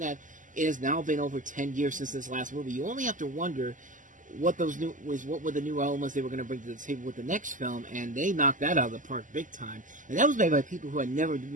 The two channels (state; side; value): late; left; 0.37 ms